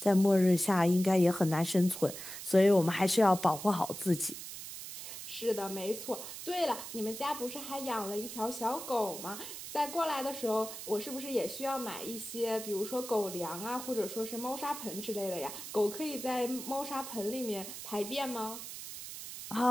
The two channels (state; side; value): noise; right; hiss, 10 dB below the sound